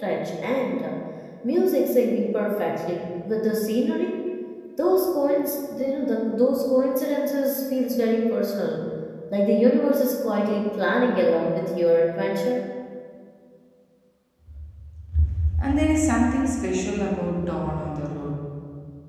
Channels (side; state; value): both; identical; correlation 1.00